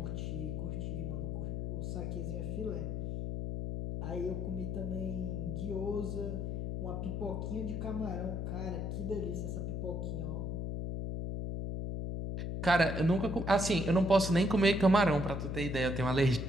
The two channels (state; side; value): noise; left; hum, 2 dB below the sound